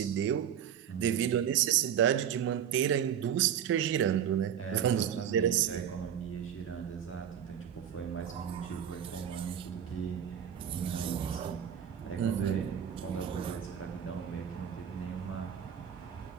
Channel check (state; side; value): quieter; left; 9.1 dB